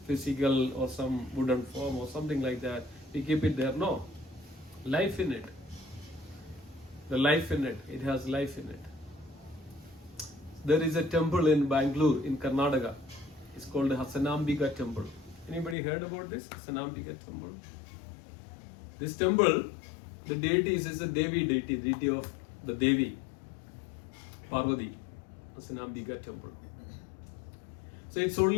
physical or some wooden form or something like that. We keep it there. No. Life in it. The life in it. It has life in it. There is a temple in Bangalore, in Karnataka. It's called the Hasanambika temple. Anybody heard about this? Hasanambika temple. This temple, the deity is a Devi deity, deity of the Devi, Parvati, Hasanambika temple. So it's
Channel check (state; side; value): drops out; right; at 15.8 s